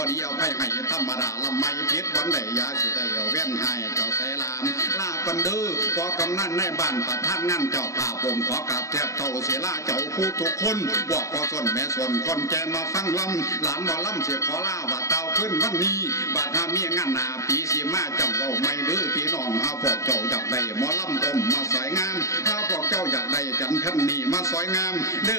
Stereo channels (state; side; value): late; right; 0.15 ms